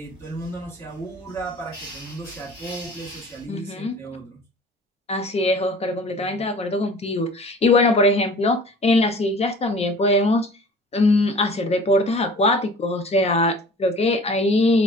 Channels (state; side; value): normal; both; correlation 0.45